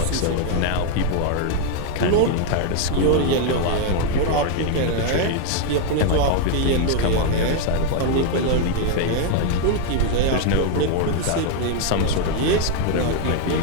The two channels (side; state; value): both; different; correlation 0.01